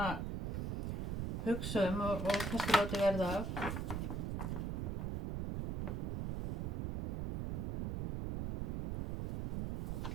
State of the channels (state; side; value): noise; right; rumble, 2 dB below the sound